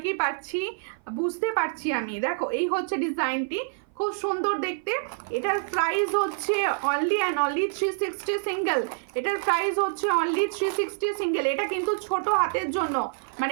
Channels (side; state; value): left; silent; 56 dB below the other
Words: পাচ্ছি, বুঝতে পারছি আমি। দেখো এই হচ্ছে ডিজাইনটি, খুব সুন্দর দেখতে। এটার প্রাইস হচ্ছে অনলি অ্যান্ড অনলি 360 সিঙ্গেল। এটার প্রাইস হচ্ছে অনলি 360 সিঙ্গেল। এটা কিন্তু ছোট হাতের জন্য,